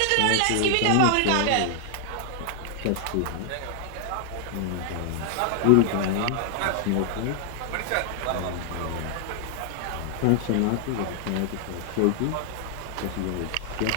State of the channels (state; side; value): different; both; correlation 0.00